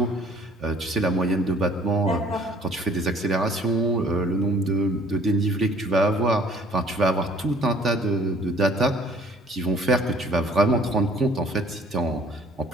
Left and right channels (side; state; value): both; normal; correlation 0.56